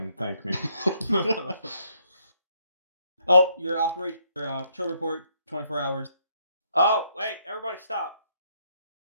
thank me. Oh, your patrol report, 24 hours. Oh, wait, everybody stop.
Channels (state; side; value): inverted; both; correlation -0.71